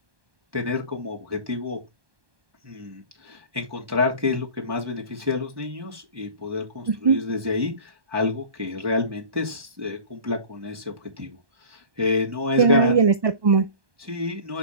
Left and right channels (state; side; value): late; left; 1.2 ms